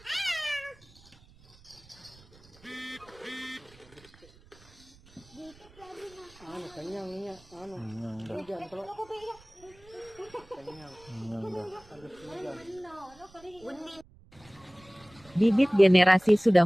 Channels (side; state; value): right; noise; rumble, 26 dB below the sound